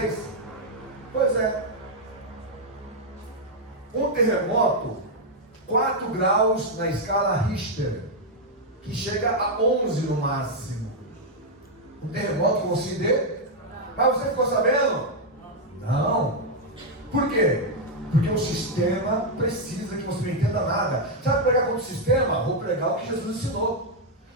Pois é. Um terremoto, 4 graus na escala Richter, que chega a 11 no máximo. Um terremoto que você dê? Mas você ficou sabendo? Não. Por quê? Porque o sistema precisa que você não entenda nada. Sabe pregar contra o sistema? Vou pregar o que Jesus ensinou.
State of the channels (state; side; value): normal; both; correlation -0.01